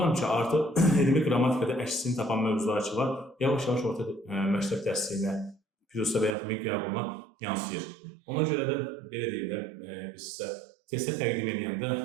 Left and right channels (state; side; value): drops out; left; at 6.4 s